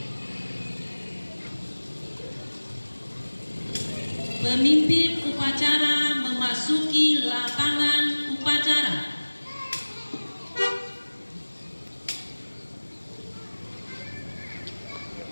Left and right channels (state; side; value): inverted; both; correlation -1.00